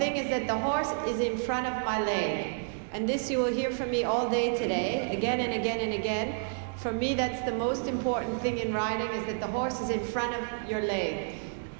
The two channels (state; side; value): silent; left; digital silence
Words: is that the horse is in front of my leg. And this you will hear from me all day today, again and again and again. For me, that's the most important thing in riding, is that the horse is in front of your leg.